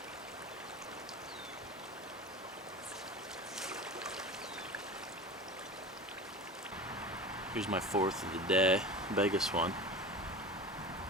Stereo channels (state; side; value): normal; both; correlation 0.32